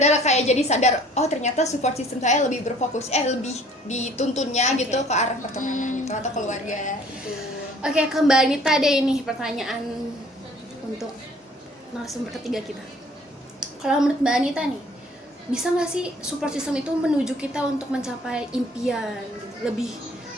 kayak jadi sadar, oh ternyata support system saya lebih berfokus lebih dituntunnya gitu ke arah pertemanan gitu atau keluarga. Oke, ke Mbak Anita deh ini pertanyaan untuk narasumber ketiga kita. Kalau menurut Mbak Anita nih, bisa nggak sih support system itu menuju kita untuk mencapai impian gitu,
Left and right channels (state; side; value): normal; both; correlation 0.55